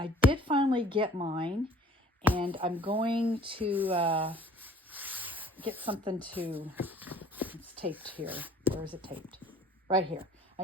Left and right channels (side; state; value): both; normal; correlation 0.52